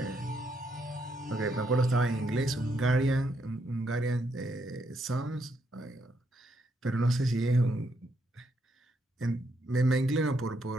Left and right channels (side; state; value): both; normal; correlation 0.76